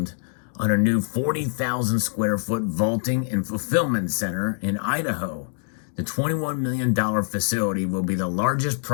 on a new 40,000 square foot vaulting and fulfillment center in Idaho. The $21 million facility will be the largest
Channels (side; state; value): right; silent; 59 dB below the other